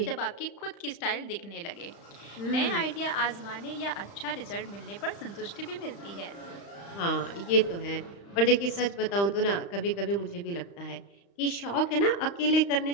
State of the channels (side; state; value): right; late; 35 ms